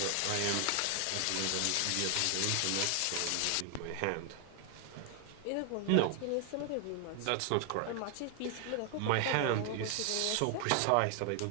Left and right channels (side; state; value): both; different; correlation 0.00